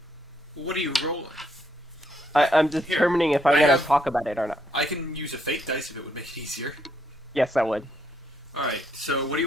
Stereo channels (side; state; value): both; normal; correlation 0.74